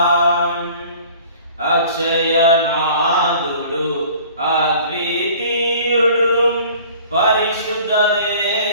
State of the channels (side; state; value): both; inverted; correlation -0.49